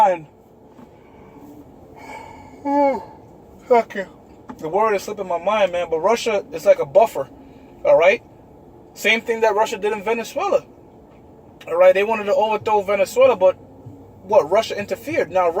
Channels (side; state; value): both; identical; correlation 1.00